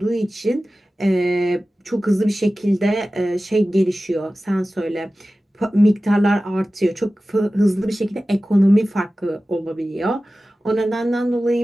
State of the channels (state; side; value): normal; both; correlation 0.96